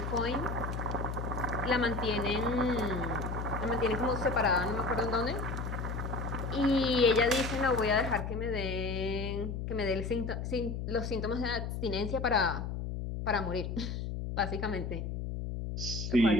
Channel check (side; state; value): left; noise; hum, 4 dB below the sound